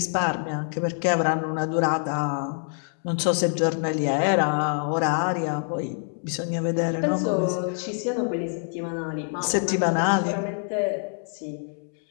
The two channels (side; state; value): right; silent; 61 dB below the other